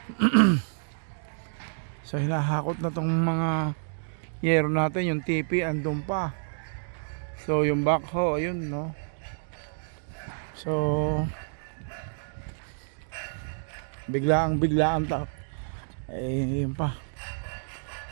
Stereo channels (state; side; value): silent; left; digital silence